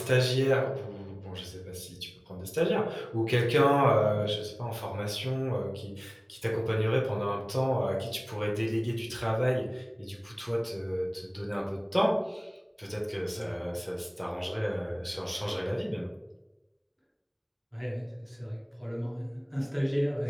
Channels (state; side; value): identical; both; correlation 1.00